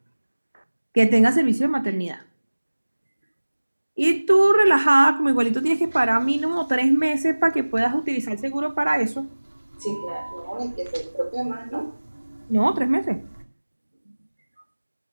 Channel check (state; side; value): inverted; both; correlation -1.00